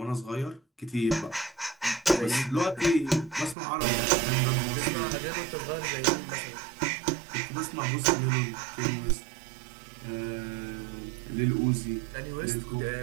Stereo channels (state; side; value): drops out; left; at 3.6 s